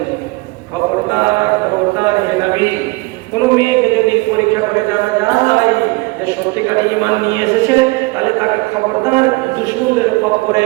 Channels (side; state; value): left; quieter; 24.2 dB